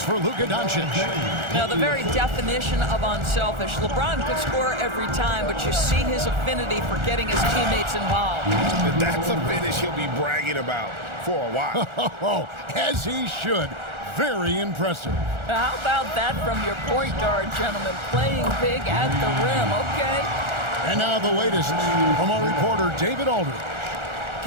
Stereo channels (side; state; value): left; late; 1.4 ms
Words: for Luka Doncic. Now, the very definition of unselfish. LeBron could score every time, but you see his affinity for getting his teammates involved. That's a finish he'll be bragging about for a while. Oh, as he should. Very impressive. How about that from your point guard, gentlemen? Playing big at the rim, okay? And now the latest from our reporter, David Aldridge.